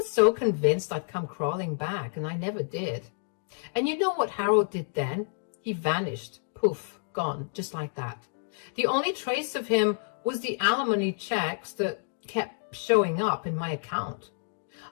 so convinced I'd come crawling back, and I never did. And you know what Harold did then? He vanished. Poof, gone, just like that. The only trace of him was the alimony checks that kept showing up in my account.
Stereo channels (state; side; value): silent; right; digital silence